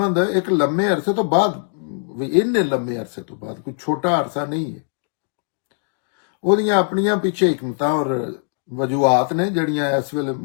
ਇੱਕ ਲੰਮੇ ਅਰਸੇ ਤੋਂ ਬਾਅਦ ਵੀ ਇੰਨੇ ਲੰਮੇ ਅਰਸੇ ਤੋਂ ਬਾਅਦ ਕੋਈ ਛੋਟਾ ਅਰਸਾ ਨਹੀਂ ਹੈ। ਉਹਦੀਆਂ ਆਪਣੀਆਂ ਪਿੱਛੇ ਹਕਮਤਾਂ ਔਰ ਵਜੂਹਾਤ ਨੇ ਜਿਹੜੀਆਂ ਇਸ ਵੇਲੇ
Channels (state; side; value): silent; right; digital silence